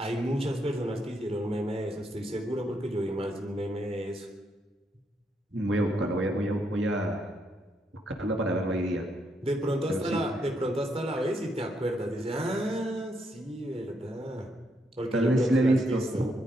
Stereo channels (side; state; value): both; normal; correlation 0.77